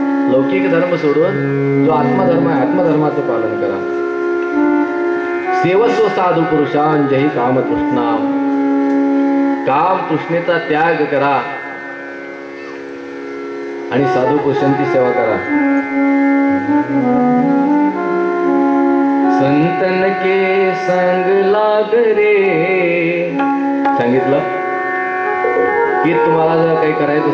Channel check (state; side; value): identical; both; correlation 1.00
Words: लौकिक धर्म सोडून जो आत्मधर्म आहे आत्मधर्माचं पालन करा. सेवस्व साधू पुरुषांजही काम तृष्णा, काम तृष्णेचा त्याग करा आणि साधू पुरुषांची सेवा करा. संतन के संग लाग रे, सांगितलं की तुम्हाला जर काही करायचं